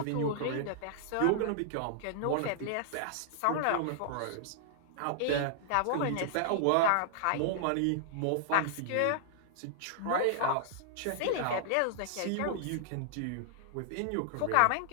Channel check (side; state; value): both; different; correlation -0.01